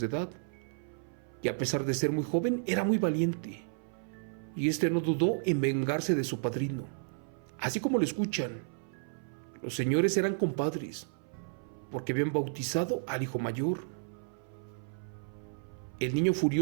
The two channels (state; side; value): silent; left; 56 dB below the other